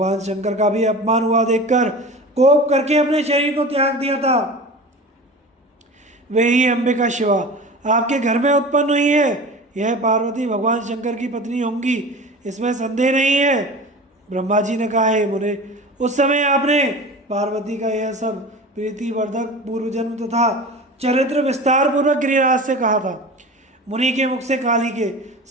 शंकर का भी अपमान हुआ देखकर कोप करके अपने शरीर को त्याग दिया था। वे ही अंबिका शिवा आपके घर में उत्पन्न हुई है। यह पार्वती भगवान शंकर की पत्नी होंगी, इसमें संदेह नहीं है। ब्रह्मा जी ने कहा, हे मुने, उस समय आपने पार्वती का यह सब प्रीतिवर्धक पूर्व जन्म तथा चरित्र विस्तार पूर्वक गिरिराज से कहा था। मुनि के मुख से काली के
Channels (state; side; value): normal; both; correlation 0.35